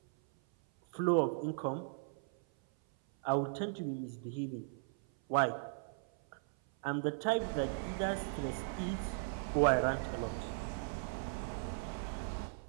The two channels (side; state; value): left; silent; 53 dB below the other